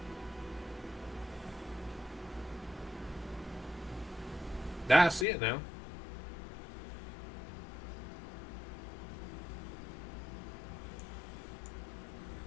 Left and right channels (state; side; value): drops out; right; at 5.2 s